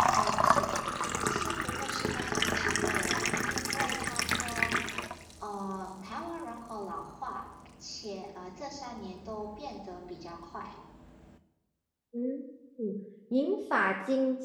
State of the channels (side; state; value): both; identical; correlation 1.00